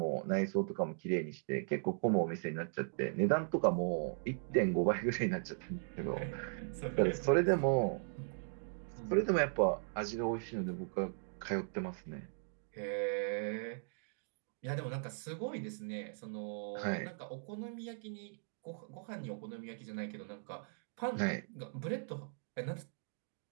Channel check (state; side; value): silent; left; digital silence